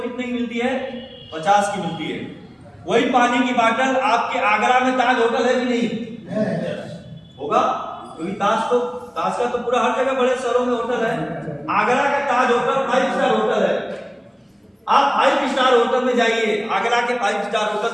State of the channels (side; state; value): both; identical; correlation 1.00